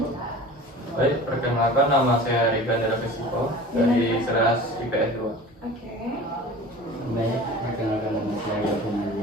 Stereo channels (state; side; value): normal; both; correlation 0.39